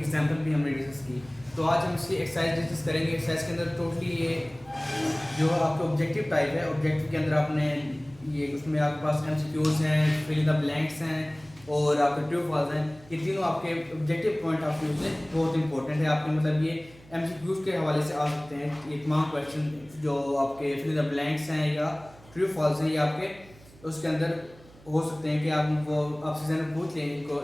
एग्जाम्पल भी हमने डिस्कस की। तो आज हम इसकी एक्सरसाइज डिस्कस करेंगे। एक्सरसाइज के अंदर टोटली ये जो आपका ऑब्जेक्टिव टाइप है, ऑब्जेक्टिव के अंदर आपने ये उसमें आपके पास MCQs हैं, फिल इन द ब्लैंक्स हैं और आपके ट्रू फॉल्स हैं। ये तीनों आपके ऑब्जेक्टिव पॉइंट ऑफ व्यू से बहुत इंपॉर्टेंट है। आपके मतलब ये MCQs के हवाले से आ सकते हैं। ये तमाम क्वेश्चन जो आपके फिल इन द ब्लैंक्स हैं या ट्रू फॉल्स हैं, ये आपके उसके अंदर हो सकते हैं कि आप वो आपसे ज़रा पूछ लें इनको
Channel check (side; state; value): right; noise; hum, 24 dB below the sound